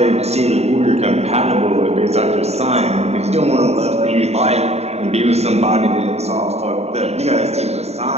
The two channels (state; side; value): late; left; 0.31 ms